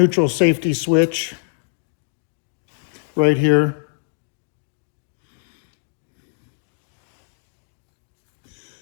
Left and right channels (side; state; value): right; silent; digital silence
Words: safety switch right here.